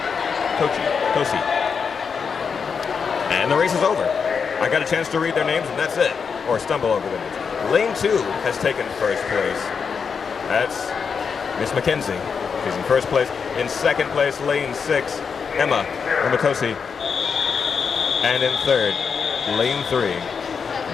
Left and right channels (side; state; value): right; quieter; 6.0 dB